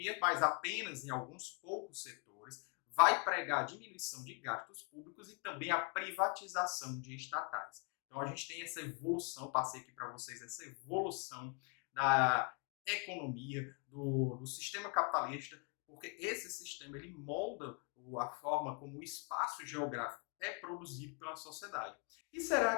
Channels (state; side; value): quieter; right; 34.5 dB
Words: mas apenas em alguns poucos setores, vai pregar a diminuição de gastos públicos e também a privatização de estatais. Então a gente tem essa evolução, passei aqui para vocês essa evolução da economia, do sistema capitalista, porque esse sistema ele molda a forma como o espaço geográfico é produzido pela sociedade. E será